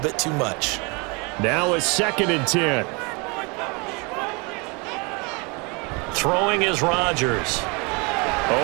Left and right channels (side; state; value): left; quieter; 29.7 dB